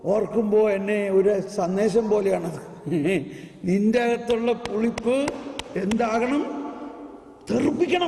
ഓർക്കുമ്പോൾ എന്നെ ഒരു സന്ദേശം പോലെയാണത്. നിന്റെ അകത്തുള്ള പുളിപ്പ് എന്താകണം?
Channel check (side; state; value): both; identical; correlation 1.00